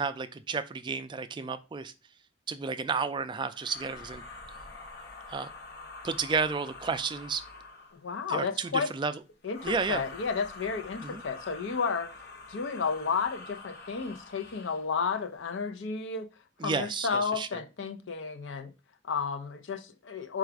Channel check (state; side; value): normal; both; correlation -0.15